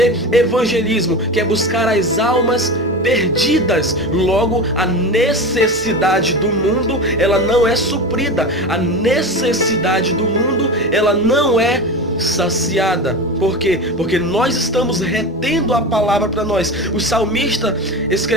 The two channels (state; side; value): normal; both; correlation 0.26